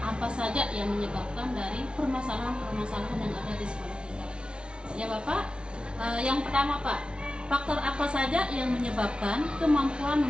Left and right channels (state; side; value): late; left; 0.057 ms